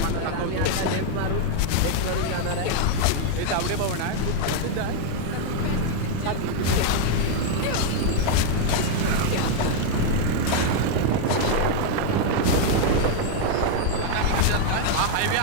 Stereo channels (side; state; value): both; different; correlation 0.00